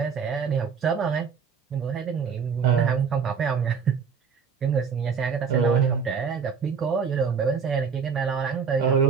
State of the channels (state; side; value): quieter; left; 6.3 dB